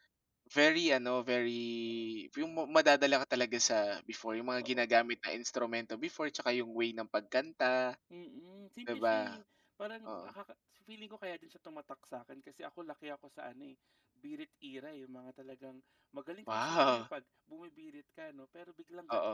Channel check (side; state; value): both; identical; correlation 1.00